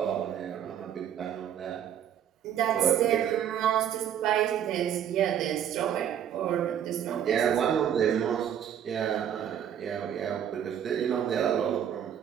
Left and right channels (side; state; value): left; quieter; 9.5 dB